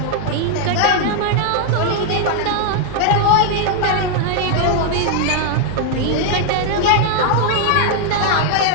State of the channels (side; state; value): both; different; correlation 0.00